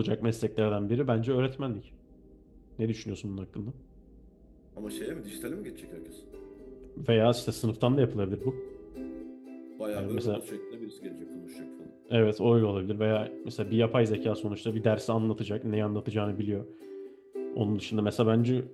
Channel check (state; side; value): identical; both; correlation 1.00